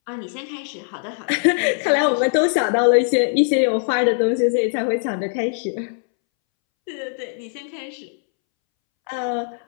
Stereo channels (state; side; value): silent; right; 65 dB below the other